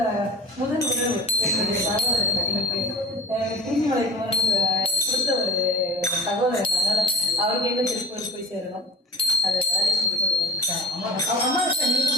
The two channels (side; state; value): both; normal; correlation 0.37